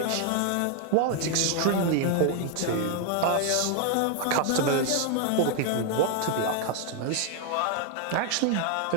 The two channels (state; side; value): different; both; correlation 0.00